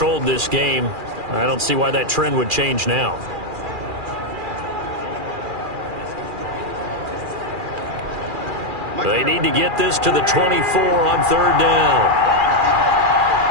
this game. I don't see why that trend would change now. They need to get this to the 24 on 3rd down.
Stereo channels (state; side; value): late; left; 2.4 ms